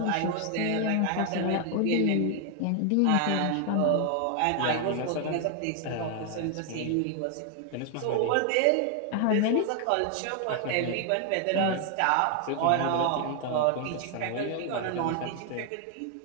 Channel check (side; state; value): both; different; correlation 0.00